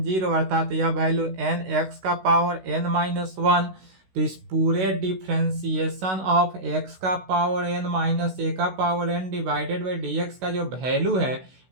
0, अर्थात यह वैल्यू n x का पावर n माइनस वन। तो इस पूरे डिफ्रेंसिएशन ऑफ x का पावर n माइनस ए का power n divided by D X का जो वैल्यू है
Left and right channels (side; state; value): left; late; 16 ms